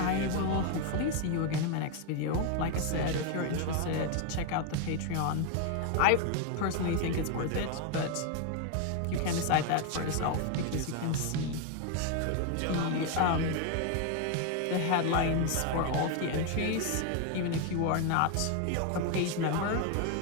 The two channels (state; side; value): different; both; correlation 0.01